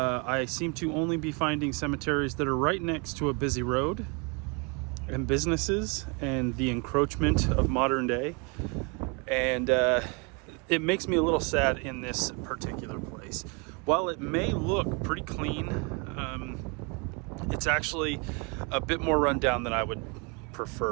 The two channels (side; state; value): left; quieter; 31.8 dB